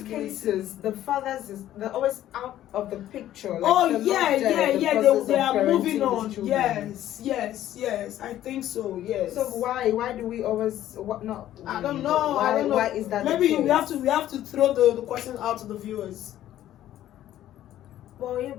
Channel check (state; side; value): quieter; right; 12.7 dB